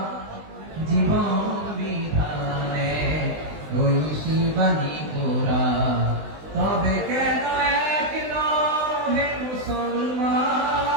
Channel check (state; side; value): late; left; 20 ms